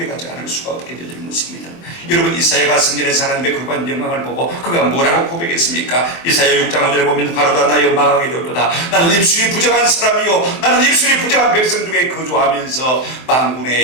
않을 수가 없게 되어지는 것입니다. 여러분, 이사야가 성전에서 하나님의 거룩한 영광을 보고 그가 뭐라고 고백했습니까? 이사야 6장 5절에 보면 가로다 나여 망하게 되었도다. 나는 입술이 부정한 사람이요 나는 입술이 부정한 백성 중에 거주하면서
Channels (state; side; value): late; right; 23 ms